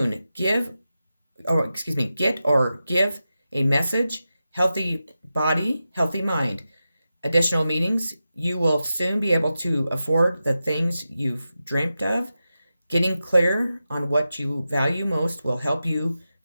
Get or give a message. Healthy body, healthy mind. Additional meetings. You will soon be able to afford the things you've dreamt of. Getting clear on what you value most will help you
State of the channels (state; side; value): inverted; both; correlation -0.91